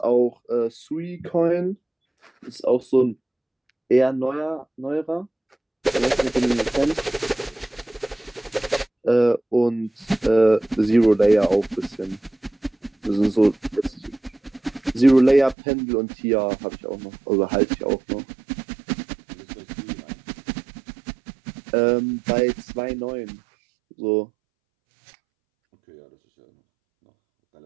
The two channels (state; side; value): drops out; left; at 15.6 s